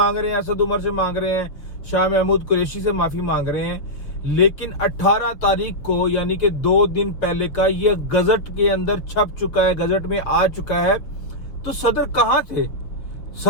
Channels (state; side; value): late; right; 6.6 ms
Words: रहे हैं, असद उमर से मांग रहे हैं, शाह महमूद कुरैशी से माफ़ी मांग रहे हैं। लेकिन 18 तारीख को, यानी कि 2 दिन पहले का, ये गजट के अंदर छप चुका है, गजट में आ चुका है। तो सदर